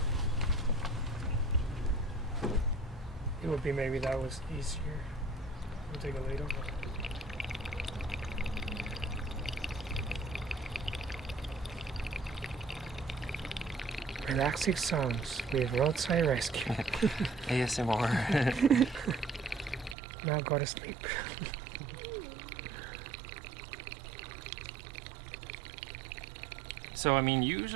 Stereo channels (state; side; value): drops out; left; at 20.0 s